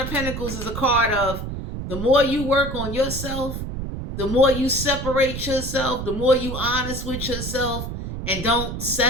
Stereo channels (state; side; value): noise; right; rumble, 6 dB below the sound